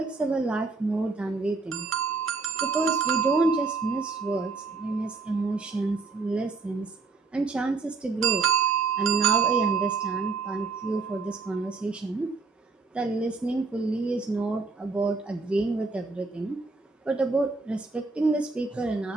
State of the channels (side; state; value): left; quieter; 4.2 dB